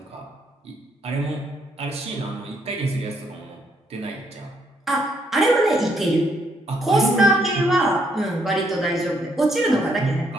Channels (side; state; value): both; normal; correlation 0.72